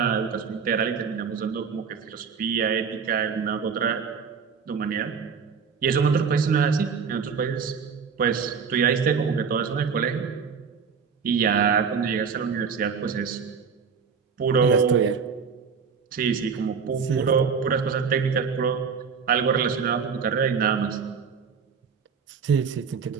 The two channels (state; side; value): quieter; left; 6.1 dB